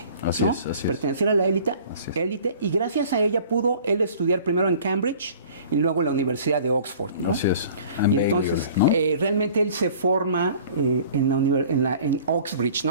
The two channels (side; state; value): both; inverted; correlation -0.48